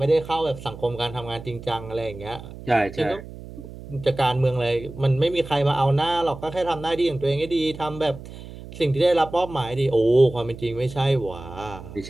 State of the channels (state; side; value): noise; right; hum, 14 dB below the sound